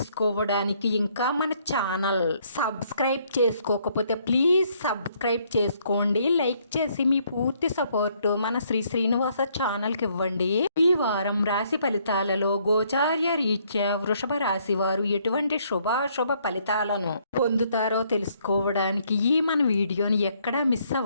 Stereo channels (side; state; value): both; inverted; correlation -0.68